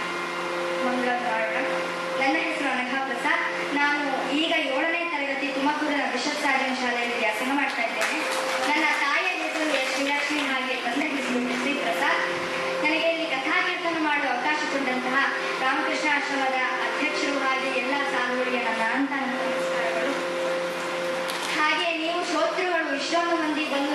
ಮಂಗಳ ಮಾಡೋಣ. ನನ್ನ ಹೆಸರು ಅನಘಾ ಪ್ರಸಾದ್. ನಾನು ಈಗ 7ನೇ ತರಗತಿ ತುಮಕೂರಿನ ಬಿಷಪ್ ಸಾರ್ಜನ್ ಶಾಲೆಯಲ್ಲಿ ವ್ಯಾಸಂಗ ಮಾಡ್ತಾ ಇದ್ದೇನೆ. ನನ್ನ ತಾಯಿಯ ಹೆಸರು ಶ್ರೀಲಕ್ಷ್ಮಿ, ಹಾಗೆ ತಂದೆ ಹೆಸರು ಶ್ರೀ ಪ್ರಸಾದ್. ನನಗೆ ಇಲ್ಲಿ ಕಥಾಕೀರ್ತನ ಮಾಡುವ ಅವಕಾಶ ಕೊಟ್ಟಂತಹ ರಾಮಕೃಷ್ಣ ಆಶ್ರಮದ ಅಧ್ಯಕ್ಷರು ಹಾಗೆ ಎಲ್ಲ ಸಾಧುಗಳಿಗೆ ನನ್ನ ಅನಂತ ನಮಸ್ಕಾರಗಳು. ಇಷ್ಟೊಂದು ಮಂದಿ ಬಂದು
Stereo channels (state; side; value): identical; both; correlation 1.00